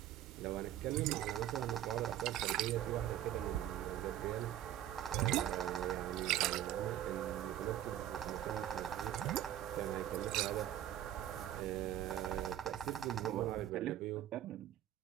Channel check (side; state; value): left; quieter; 11.9 dB